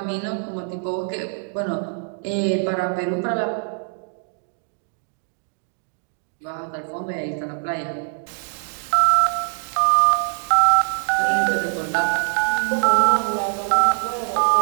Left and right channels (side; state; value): left; silent; 62 dB below the other